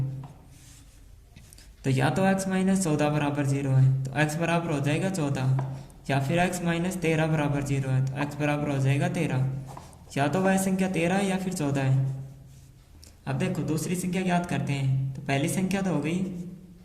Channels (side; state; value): both; identical; correlation 1.00